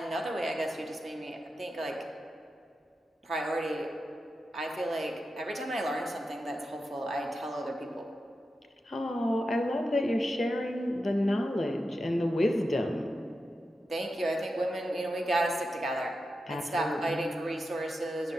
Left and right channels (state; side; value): normal; both; correlation 0.90